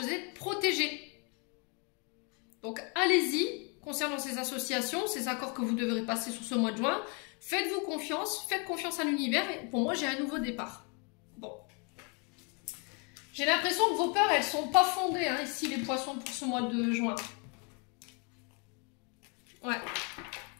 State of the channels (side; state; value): right; quieter; 34.6 dB